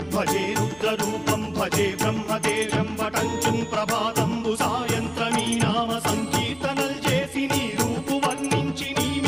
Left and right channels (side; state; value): right; noise; hum, 26 dB below the sound